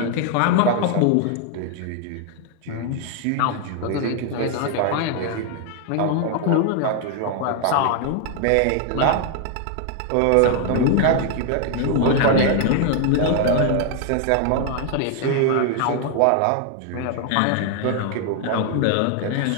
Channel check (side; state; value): both; different; correlation 0.00